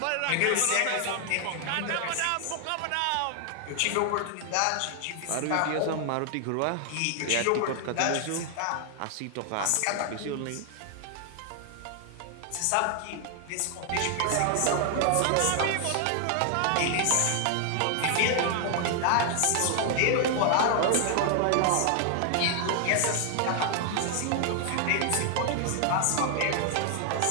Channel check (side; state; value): both; different; correlation 0.00